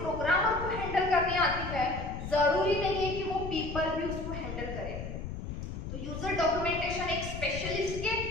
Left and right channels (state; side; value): noise; left; rumble, 7 dB below the sound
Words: को हैंडल करनी आती है जरूरी नहीं है कि वो पीपल भी उसको हैंडल करें। तो यूजर डॉक्यूमेंटेशन एक स्पेशलिस्ट के